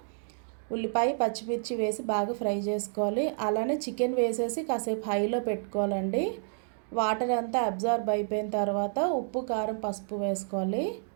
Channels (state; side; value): silent; left; digital silence